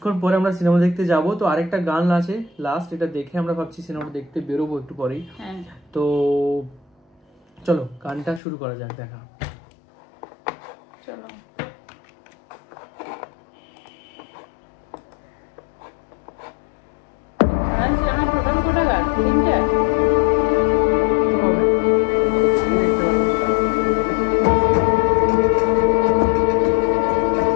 পরে আমরা সিনেমা দেখতে যাব। তো আরেকটা গান আছে লাস্ট, এটা দেখে আমরা ভাবছি সিনেমাটা দেখতে বেরোবো একটু পরেই। তো চলো গানটা শুরু করা যাক, দেখা। চলো। আমার প্রোগ্রাম কোটা গান তিনটা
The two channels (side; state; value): right; drops out; at 8.4 s